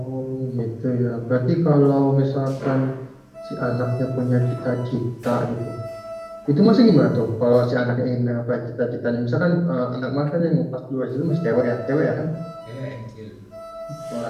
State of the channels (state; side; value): identical; both; correlation 1.00